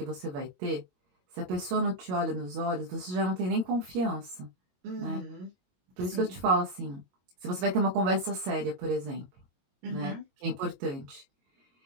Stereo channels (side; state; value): left; late; 22 ms